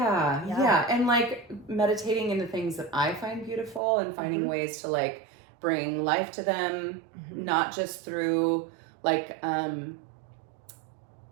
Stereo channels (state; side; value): drops out; left; at 3.8 s